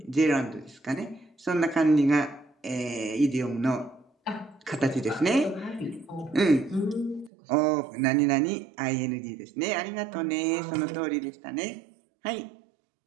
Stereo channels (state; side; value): drops out; left; at 7.3 s